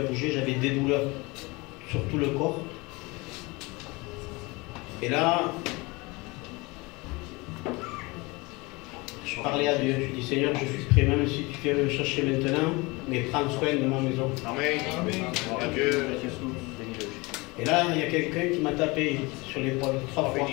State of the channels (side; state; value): right; quieter; 24.8 dB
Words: j'avais des douleurs sur tout le corps. Et là, je parlais à Dieu, je dis Seigneur, je suis prêt, même si tu viens me chercher maintenant, mais prends soin de ma maison. Amen. Gloire à Dieu. Et là, il y a quelqu'un qui m'a tapé sur l'épaule 3 fois.